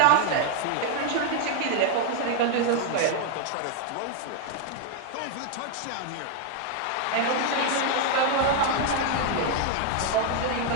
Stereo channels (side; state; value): both; different; correlation 0.00